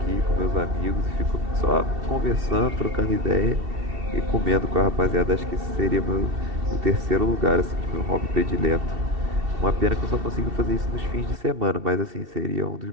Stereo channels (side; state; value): left; late; 2.7 ms